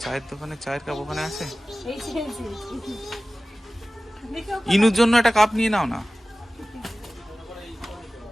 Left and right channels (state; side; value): normal; both; correlation 0.97